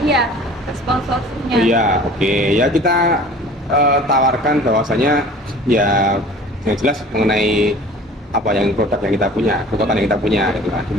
sponsornya. Iya, oke. Ya kita tawarkan bahwasanya ya yang jelas mengenai apa yang produk yang kita punya, kekuatan yang kita punya gitu kan. Di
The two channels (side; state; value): both; normal; correlation 0.45